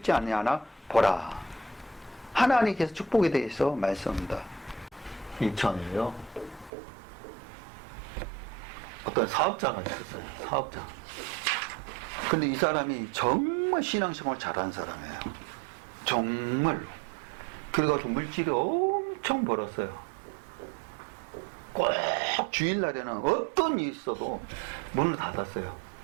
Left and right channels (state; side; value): drops out; left; at 6.7 s